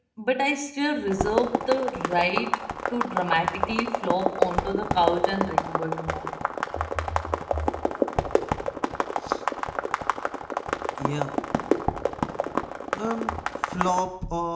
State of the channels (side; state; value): both; identical; correlation 1.00